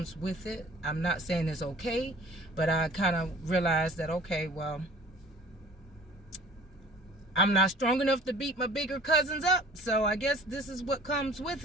with it. I'm not saying it's okay, but I kind of realized that, okay, well, I'm not strong enough to beat my bigger cousins up, so I guess this is what comes with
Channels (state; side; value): normal; both; correlation 0.49